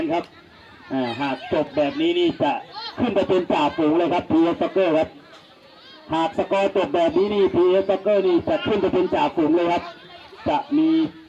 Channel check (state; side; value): identical; both; correlation 1.00